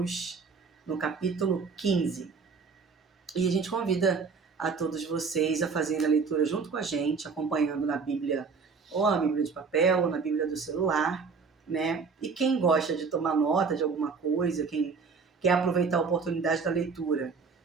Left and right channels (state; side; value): quieter; left; 5.1 dB